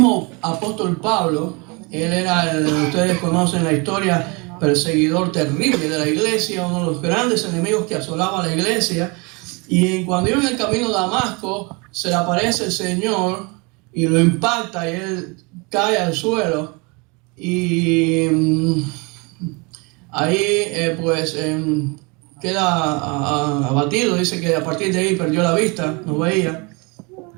apóstol Pablo, él era, ustedes conocen la historia, perseguidor terrible de la iglesia, uno de los grandes enemigos que asolaba la iglesia. Y cuando iba en el camino de Damasco, se le aparece el Señor y lo impacta y él cae al suelo. Y ahí queda abatido. Dice que a partir de ahí perdió la vista, no veía.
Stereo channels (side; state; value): left; quieter; 29.5 dB